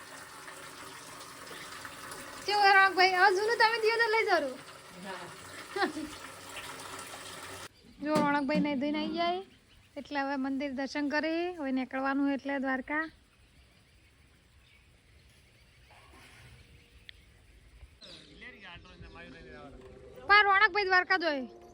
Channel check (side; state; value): both; identical; correlation 1.00